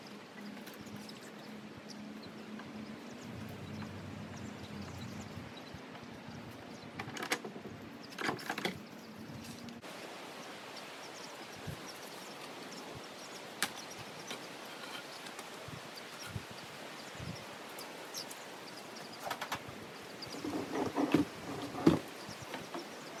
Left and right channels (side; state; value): both; identical; correlation 1.00